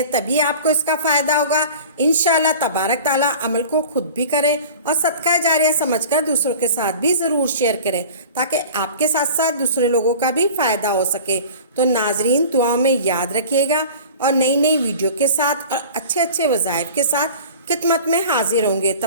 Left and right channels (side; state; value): both; inverted; correlation -0.40